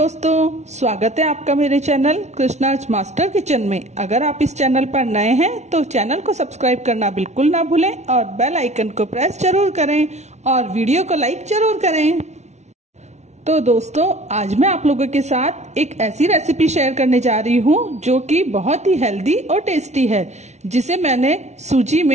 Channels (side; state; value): left; late; 0.32 ms